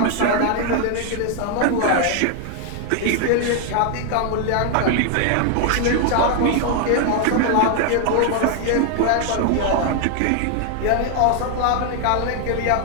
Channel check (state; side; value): different; both; correlation 0.00